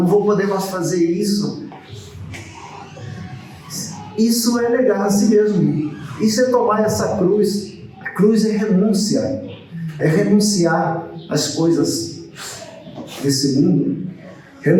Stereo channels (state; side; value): identical; both; correlation 1.00